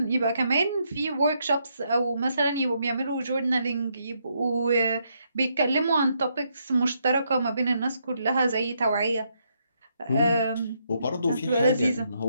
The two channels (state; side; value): inverted; both; correlation -0.77